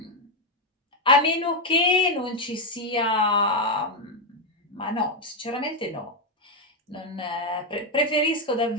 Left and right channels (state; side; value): normal; both; correlation 0.04